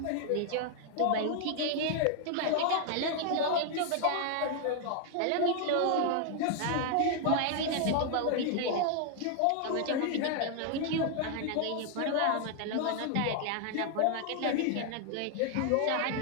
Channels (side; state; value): both; different; correlation 0.00